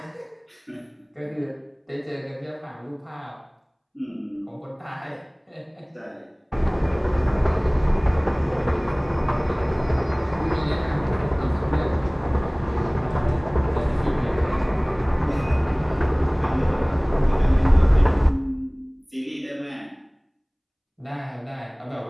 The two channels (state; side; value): identical; both; correlation 1.00